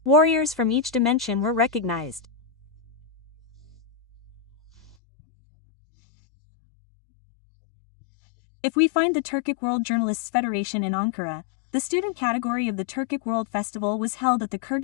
Warriors from each dimension were recognized. If we find the Turkic World Journalists Federation in Ankara, the student category of the Turkic World Festival was held at the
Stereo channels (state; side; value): drops out; right; at 5.0 s